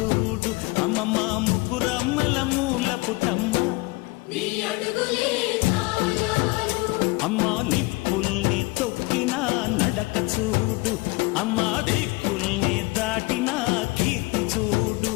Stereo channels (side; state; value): right; quieter; 23.7 dB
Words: అమ్మమ్మ ముగ్గురమ్మల మూల పుటమ్మ అమ్మా నిప్పుల్ని తొక్కిన నడక చూడు, అమ్మా దిక్కుల్ని దాటిన కీర్తి చూడు,